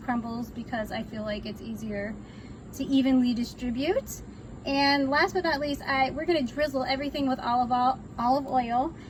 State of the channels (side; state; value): both; identical; correlation 1.00